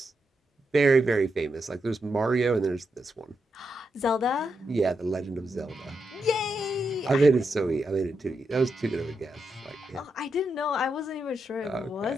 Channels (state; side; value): normal; both; correlation 0.84